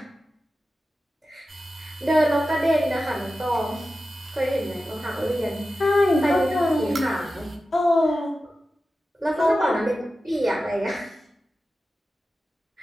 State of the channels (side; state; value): both; normal; correlation 0.93